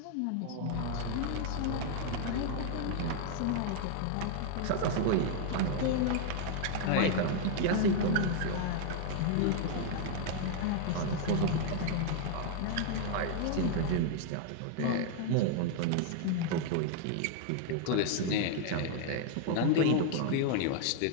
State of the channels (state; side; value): different; both; correlation 0.00